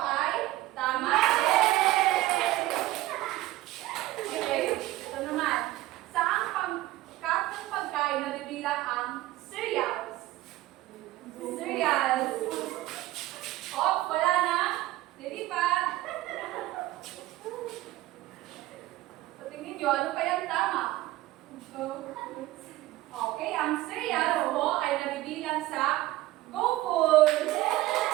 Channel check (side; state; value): left; quieter; 16.8 dB